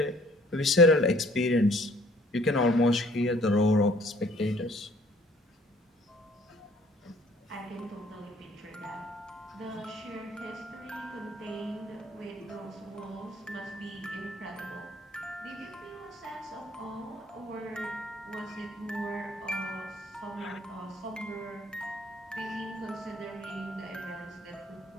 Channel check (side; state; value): both; normal; correlation 0.57